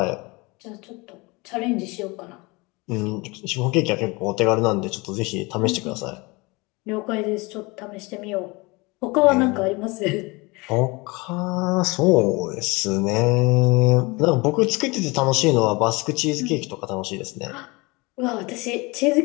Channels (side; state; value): right; quieter; 25.4 dB